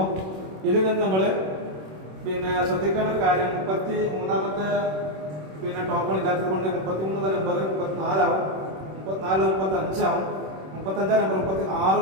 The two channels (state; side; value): late; left; 26 ms